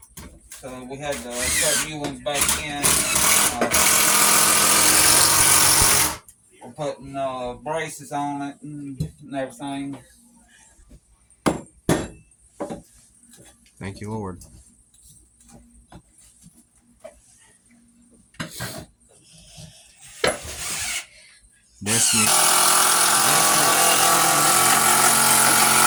so we had to put new ones back in. We're putting braces on it and everything. Thank you, Lord.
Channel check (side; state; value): both; identical; correlation 1.00